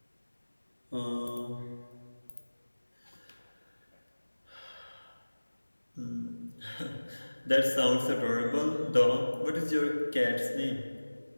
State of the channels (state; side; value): inverted; both; correlation -1.00